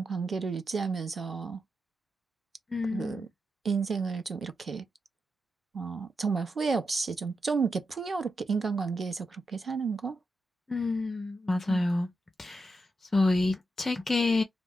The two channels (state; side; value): normal; both; correlation 0.86